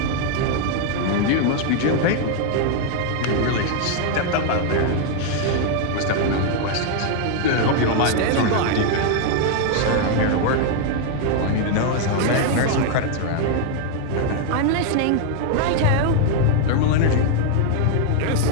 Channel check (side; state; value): both; different; correlation 0.00